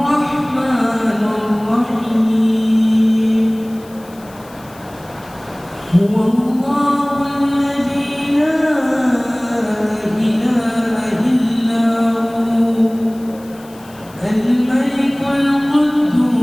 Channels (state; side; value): noise; left; hiss, 24 dB below the sound